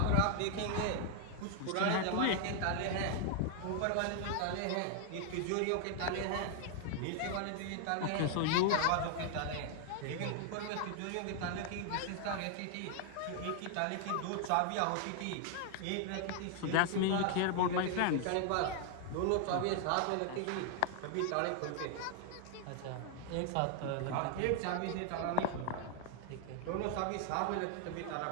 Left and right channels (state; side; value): different; both; correlation 0.00